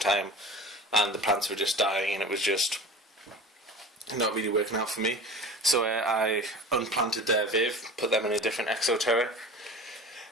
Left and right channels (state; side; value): normal; both; correlation 0.37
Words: and the plants were just dying, and it was just not really working out for me. So I unplanted their Viv, put them in a different exoterra,